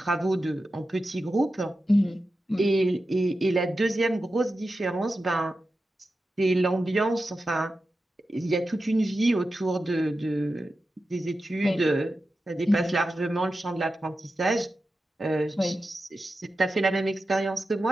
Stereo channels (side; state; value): both; normal; correlation 0.92